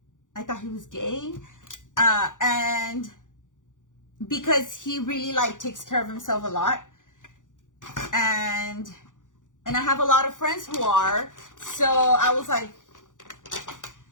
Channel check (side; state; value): right; late; 0.87 ms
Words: he was gay. And because he really like takes care of himself a lot. And I have a lot of friends who are. So I was like,